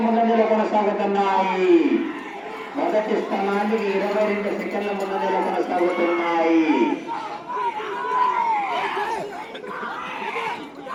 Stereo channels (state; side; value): identical; both; correlation 1.00